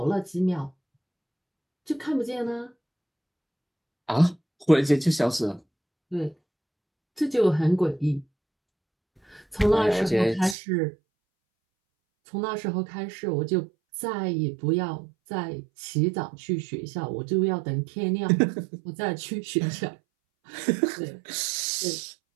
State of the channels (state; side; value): drops out; left; at 10.6 s